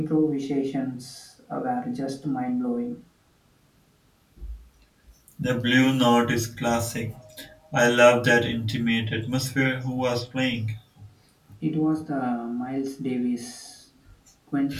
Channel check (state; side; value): identical; both; correlation 1.00